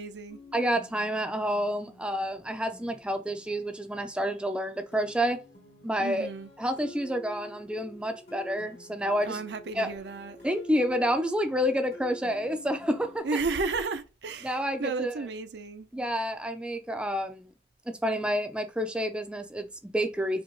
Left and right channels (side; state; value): both; normal; correlation 0.71